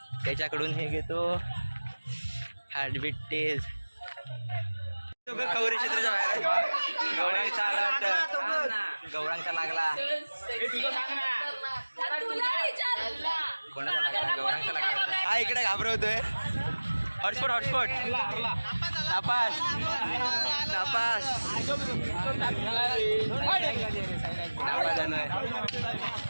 त्याच्याकडून हे घेतो हार्टबीट टेस्ट. खवरी क्षेत्राच्या बाहेर गौरांगचा आला वाटतं. गौरांगचा लागला. कोणाचा लागला? गौरांगचा लागला. हा इकडे घाबरवतोय. हॉटस्पॉट नापास नापास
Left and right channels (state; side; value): inverted; both; correlation -1.00